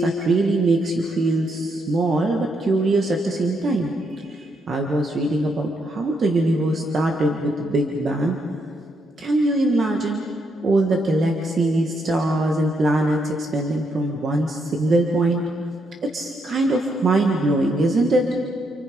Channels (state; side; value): normal; both; correlation 0.78